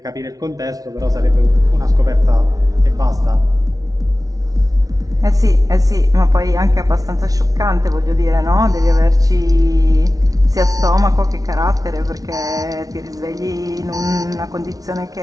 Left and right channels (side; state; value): left; late; 0.18 ms